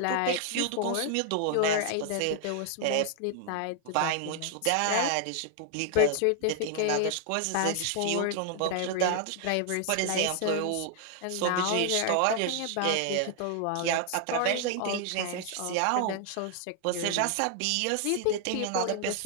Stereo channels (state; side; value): different; both; correlation 0.00